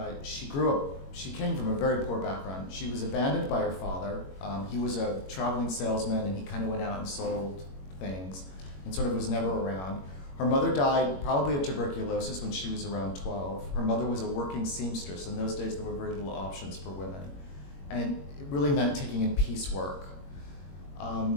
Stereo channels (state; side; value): late; right; 21 ms